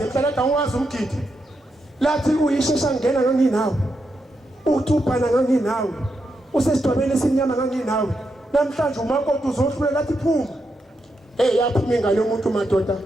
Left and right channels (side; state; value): both; normal; correlation 0.84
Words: emhlala ungazi umgidi lathi uyishesha ngena nganginawe uthubhana nganginawe usesidwabeni esinyama nganginawe namhlanje umakoti uzohlule lathi phuma yaphuma ingane yomuntu madoda